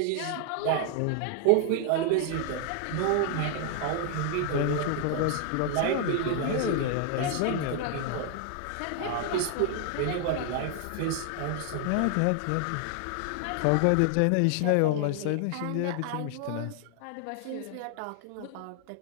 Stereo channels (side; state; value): both; different; correlation 0.00